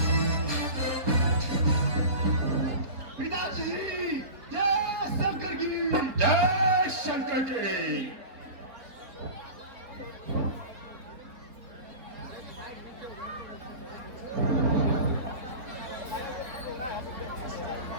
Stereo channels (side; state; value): left; late; 4.2 ms